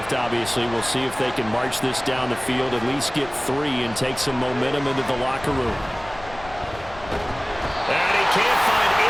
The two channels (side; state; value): left; noise; rumble, 18 dB below the sound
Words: obviously. We'll see if they can march this down the field, at least get 3 and take some momentum into the locker room. And he can't find